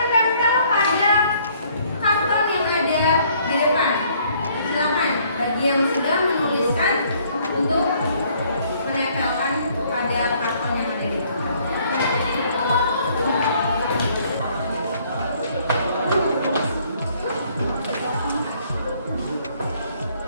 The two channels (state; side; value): inverted; both; correlation -0.63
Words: tempel pada karton yang ada di depan. Silakan bagi yang sudah menuliskan untuk menempelkan pada karton yang ada di depan.